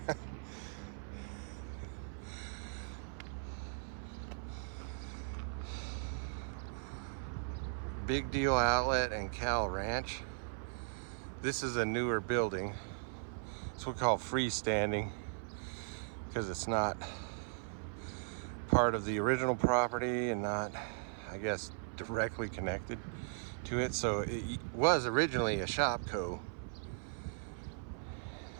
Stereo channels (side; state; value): left; silent; 52 dB below the other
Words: Big Deal Outlet and Cal Ranch. This is a newer building. It's what we call freestanding, because it's not part of the original property and not, I guess, directly connected to it. So it was originally a Shopco,